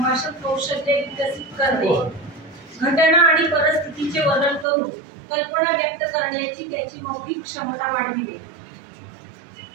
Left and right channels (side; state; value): left; drops out; at 4.7 s